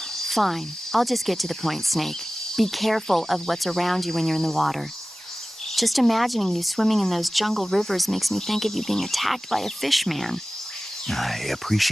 Fine, I'll just get to the point, Snake. Be careful of what's around you when you're in the water. Just imagining you swimming in those jungle rivers makes me think of you being attacked by a fishman. I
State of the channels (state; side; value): normal; both; correlation 0.97